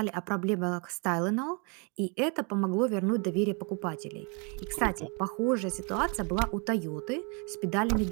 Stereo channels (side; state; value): left; quieter; 34.1 dB